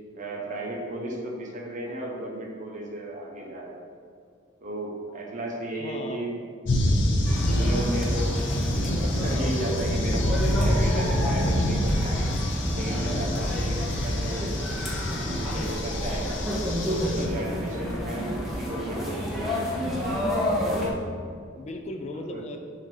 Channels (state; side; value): normal; both; correlation 0.69